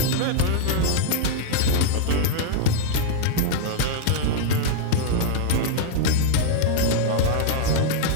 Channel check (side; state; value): both; different; correlation 0.00